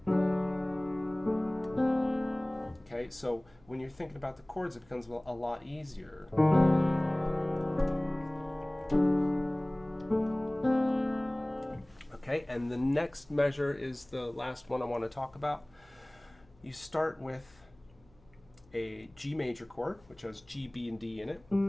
Okay, so when you're thinking about the chords, it becomes a lot easier. Okay, and the next measure is the last one I want to talk about. You start with a G major chord, which has G, B, and D in it.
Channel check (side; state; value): left; noise; hum, 29 dB below the sound